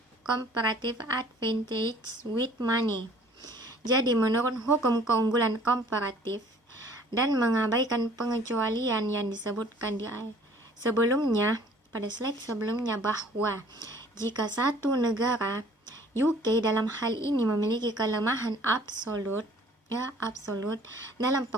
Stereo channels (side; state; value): both; normal; correlation 0.54